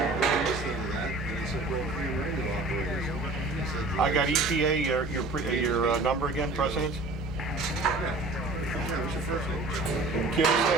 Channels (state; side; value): quieter; left; 3.1 dB